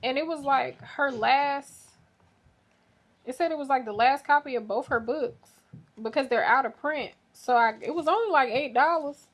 And it was like it said it was like the last copy of both her books because they're out of print. So it was only like $8.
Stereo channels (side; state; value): both; identical; correlation 1.00